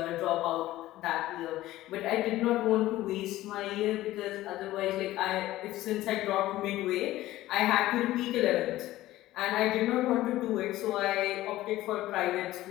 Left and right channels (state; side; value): quieter; right; 15.8 dB